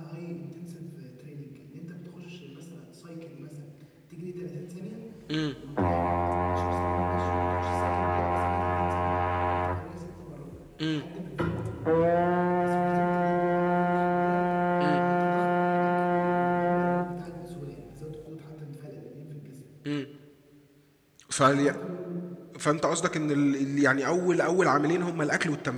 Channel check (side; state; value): both; identical; correlation 1.00